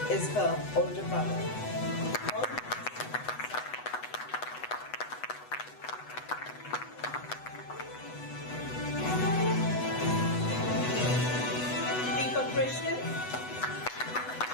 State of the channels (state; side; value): late; right; 8.1 ms